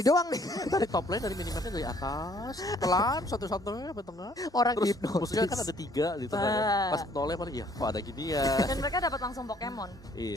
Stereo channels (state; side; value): normal; both; correlation 0.61